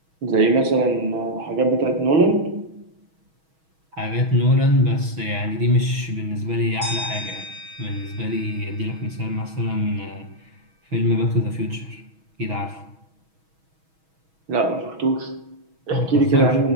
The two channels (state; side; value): late; left; 6.2 ms